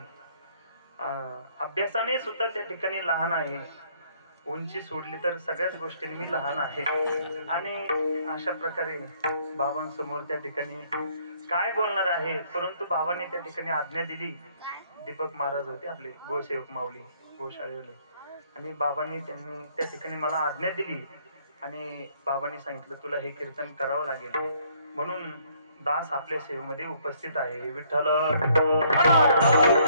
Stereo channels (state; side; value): inverted; both; correlation -0.64